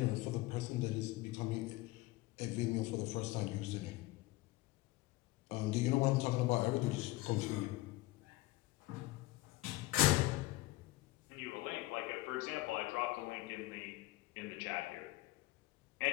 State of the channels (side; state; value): right; quieter; 19.7 dB